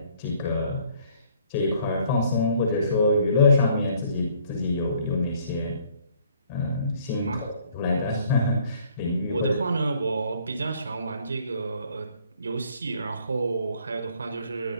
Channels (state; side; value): inverted; both; correlation -0.61